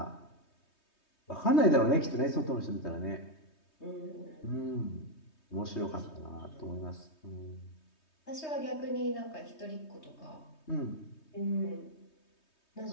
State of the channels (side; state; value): right; late; 3.2 ms